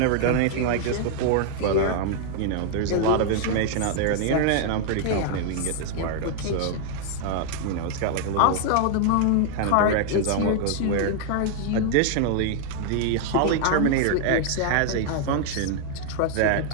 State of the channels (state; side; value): different; both; correlation -0.01